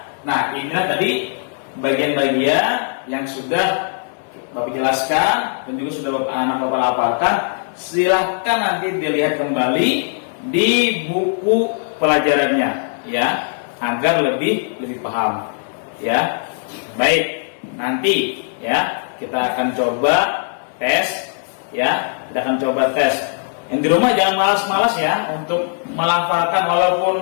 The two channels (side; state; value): right; silent; 62 dB below the other